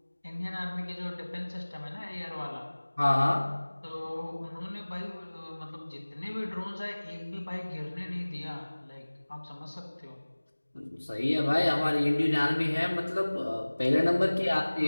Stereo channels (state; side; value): inverted; both; correlation -1.00